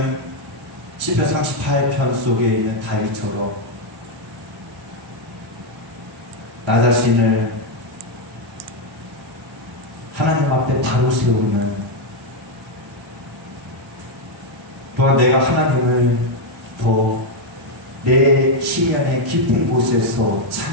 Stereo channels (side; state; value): both; normal; correlation 0.04